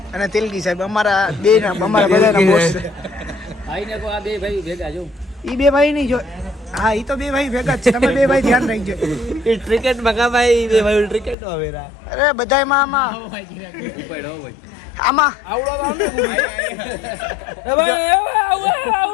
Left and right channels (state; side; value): drops out; right; at 11.4 s